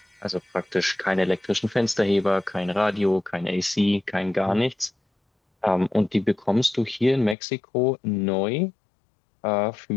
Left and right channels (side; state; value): right; drops out; at 7.4 s